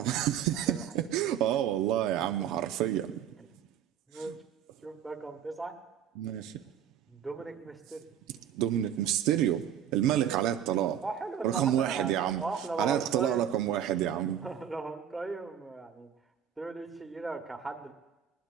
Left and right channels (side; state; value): left; quieter; 9.6 dB